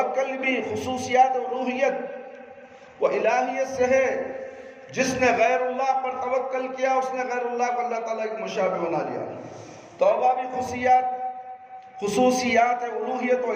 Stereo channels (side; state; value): both; identical; correlation 1.00